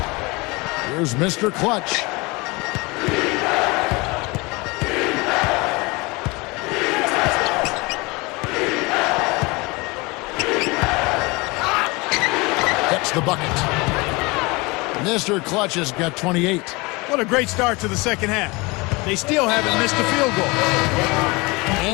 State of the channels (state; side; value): quieter; right; 25.3 dB